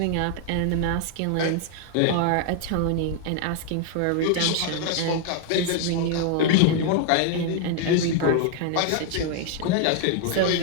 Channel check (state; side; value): different; both; correlation 0.00